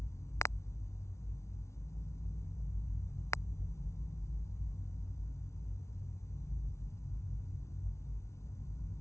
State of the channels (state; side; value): late; right; 0.13 ms